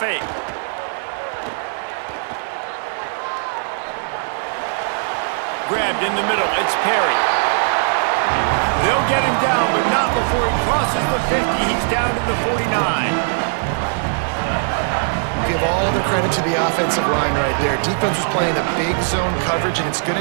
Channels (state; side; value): silent; left; digital silence